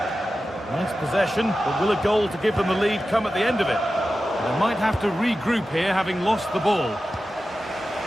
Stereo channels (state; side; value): normal; both; correlation 0.93